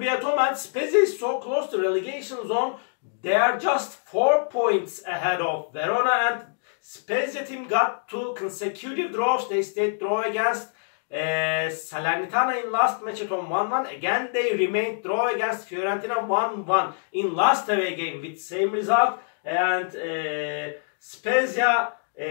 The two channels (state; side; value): silent; right; digital silence